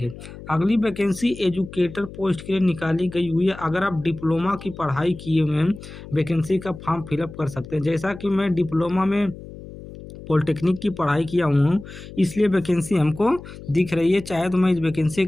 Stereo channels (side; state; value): left; noise; hum, 15 dB below the sound